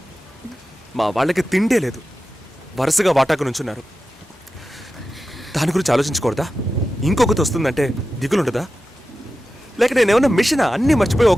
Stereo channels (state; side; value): normal; both; correlation 0.93